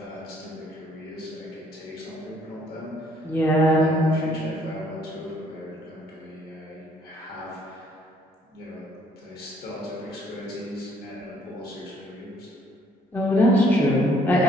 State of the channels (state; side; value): normal; both; correlation 0.64